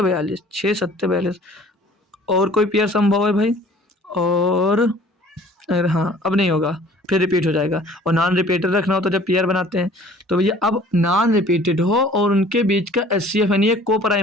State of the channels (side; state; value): both; normal; correlation 0.51